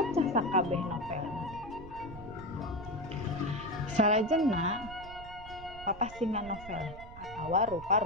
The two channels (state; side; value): noise; right; rumble, 15 dB below the sound